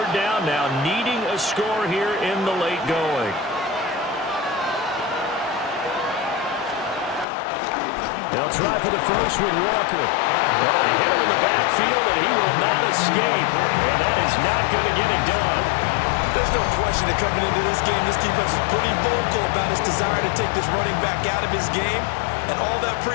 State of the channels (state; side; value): drops out; right; at 7.2 s